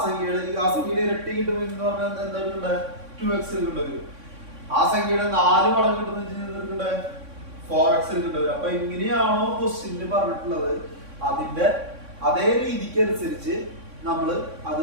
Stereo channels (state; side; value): late; left; 3.6 ms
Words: സംഖ്യയുടെ ഇരട്ടി കിട്ടുമെങ്കിൽ എന്ന് പറഞ്ഞാൽ എന്താണ് 2x കിട്ടുന്നത്. ആ സംഖ്യയുടെ 4 മടങ്ങ് കിട്ടുന്ന 4x കിട്ടുന്നത്. അപ്പൊ എങ്ങനെയാണോ ക്വസ്റ്റ്യനിൽ പറഞ്ഞിട്ടുള്ളത് അതിന്റെ അതേ രീതിക്ക് അനുസരിച്ച് നമ്മൾ